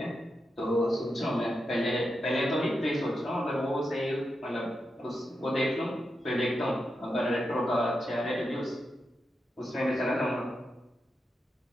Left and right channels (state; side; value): normal; both; correlation 0.87